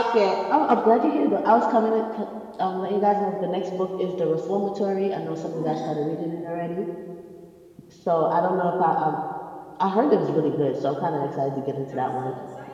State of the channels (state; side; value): identical; both; correlation 1.00